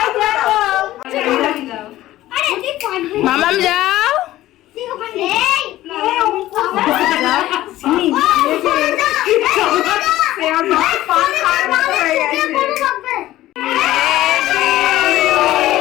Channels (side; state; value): right; quieter; 15.2 dB